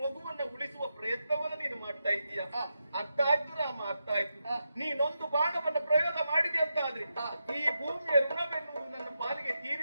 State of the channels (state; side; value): inverted; both; correlation -0.87